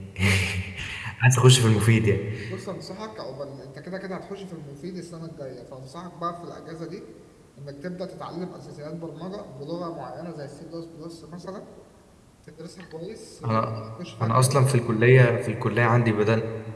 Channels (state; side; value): identical; both; correlation 1.00